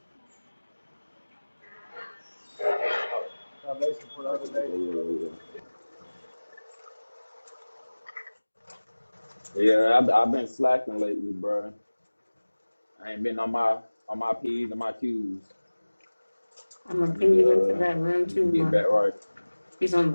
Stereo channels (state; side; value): inverted; both; correlation -1.00